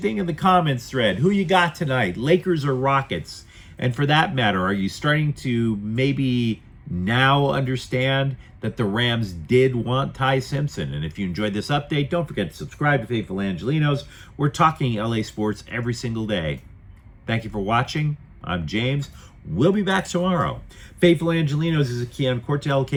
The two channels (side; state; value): both; identical; correlation 1.00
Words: in the comments thread. Who you got tonight, Lakers or Rockets? And for that matter, are you starting to maybe now understand that the Rams did want Ty Simpson? And if you enjoyed this update, don't forget to subscribe to Faithful Angelenos. We're talking LA sports every single day. Thank you for watching. I'm James. We'll be back tomorrow. Faithful Angelenos is a Keon Cortel